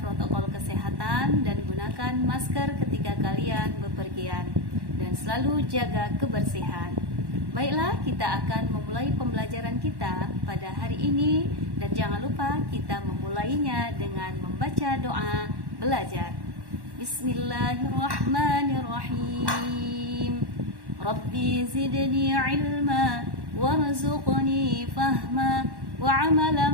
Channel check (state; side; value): late; left; 1.1 ms